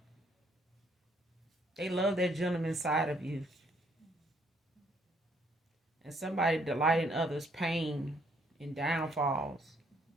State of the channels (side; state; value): both; normal; correlation 0.67